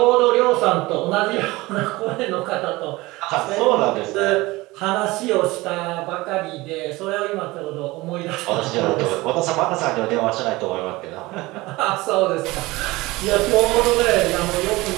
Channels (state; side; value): quieter; left; 20.7 dB